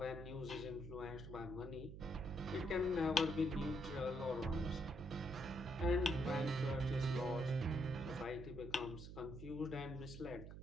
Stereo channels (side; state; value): right; noise; hum, 10 dB below the sound